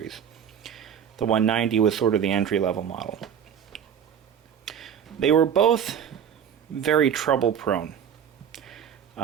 The 190 was sort of the entry-level model. They were both very trouble-prone.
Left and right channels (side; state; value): left; quieter; 8.4 dB